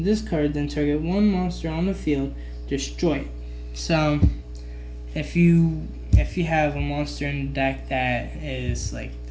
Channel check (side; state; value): both; identical; correlation 1.00